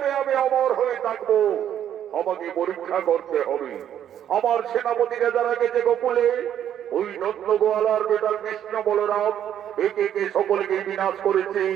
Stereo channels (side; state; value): left; quieter; 10.1 dB